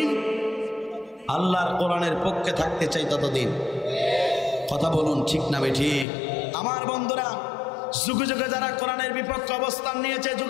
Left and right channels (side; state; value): right; drops out; at 6.1 s